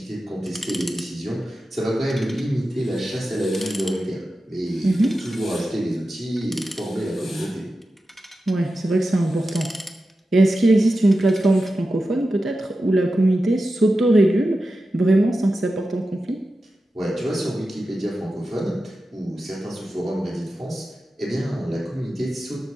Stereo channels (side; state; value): both; normal; correlation 0.92